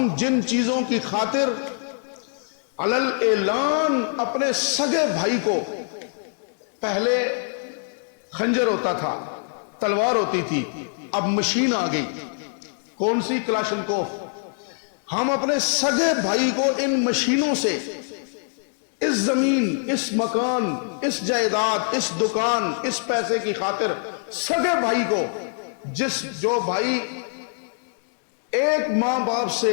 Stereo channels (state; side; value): silent; right; 63 dB below the other